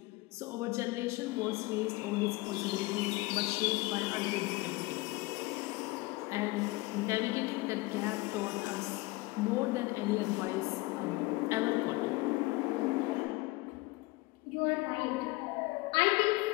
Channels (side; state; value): right; quieter; 22.2 dB